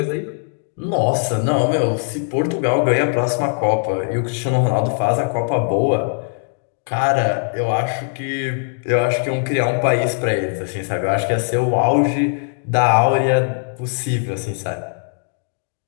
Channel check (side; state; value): right; silent; 62 dB below the other